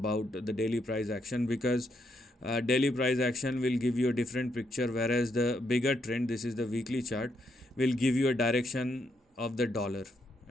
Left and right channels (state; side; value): normal; both; correlation 0.77